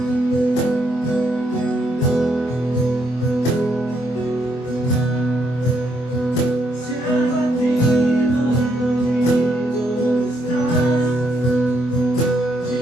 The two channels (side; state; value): right; late; 24 ms